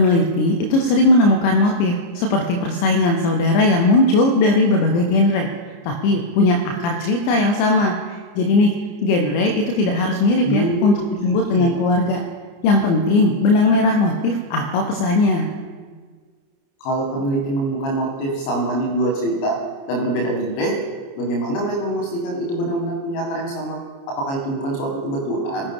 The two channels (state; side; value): late; right; 29 ms